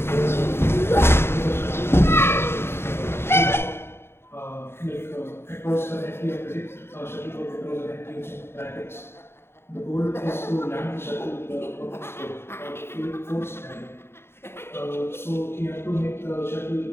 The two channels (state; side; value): late; right; 0.12 ms